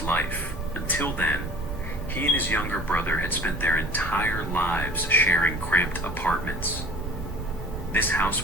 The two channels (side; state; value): right; noise; rumble, 7 dB below the sound